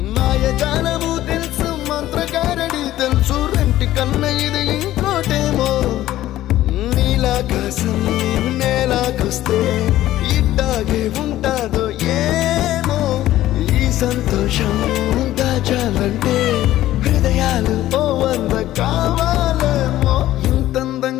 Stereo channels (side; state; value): right; quieter; 14.4 dB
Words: మాయజాలము తెలుసు మంత్రకారడి తెలుసు రెంటి కన్న ఇది ఇంకోటేమో నీలాకాశం నేలాకొస్తే ఇట్టాగే ఉంటాదో ఏమో ఈ సంతోషం దాచాలంటే హృదయాలు ఓ వంద కావాలేమో